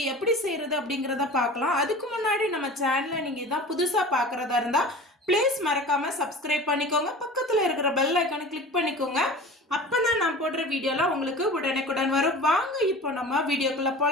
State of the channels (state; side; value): normal; both; correlation 0.37